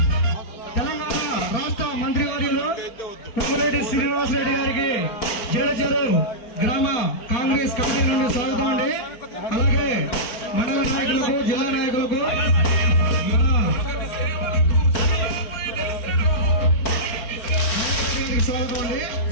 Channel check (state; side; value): late; right; 4.5 ms